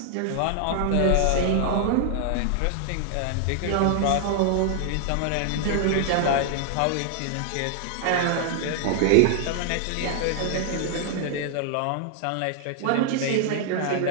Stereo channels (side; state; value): both; different; correlation 0.00